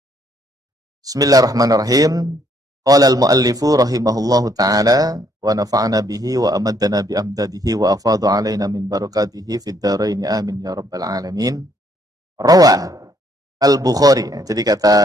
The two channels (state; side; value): normal; both; correlation 0.68